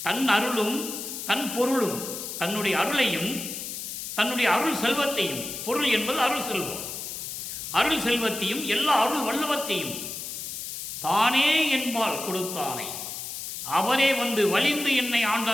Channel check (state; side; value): noise; left; hiss, 7 dB below the sound